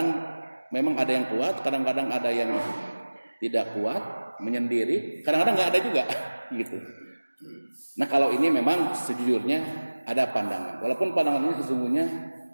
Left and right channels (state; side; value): inverted; both; correlation -1.00